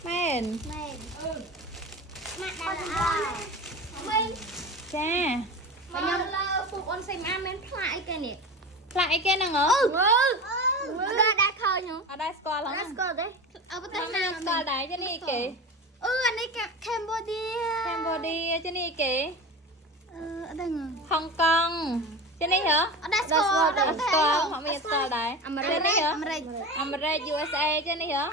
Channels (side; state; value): both; normal; correlation 0.29